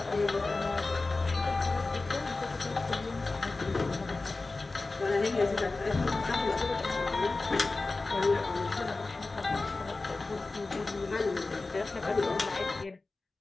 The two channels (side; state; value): right; quieter; 3.5 dB